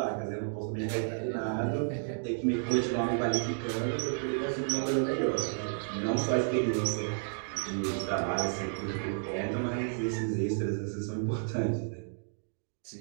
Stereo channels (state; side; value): silent; left; digital silence